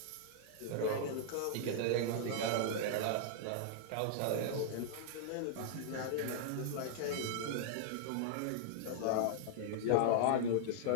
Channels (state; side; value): different; both; correlation -0.01